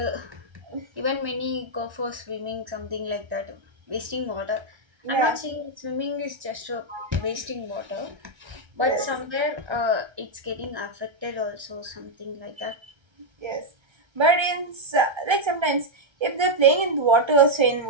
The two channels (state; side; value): late; left; 1.3 ms